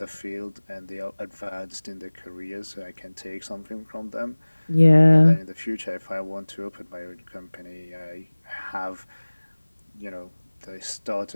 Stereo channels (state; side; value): inverted; both; correlation -1.00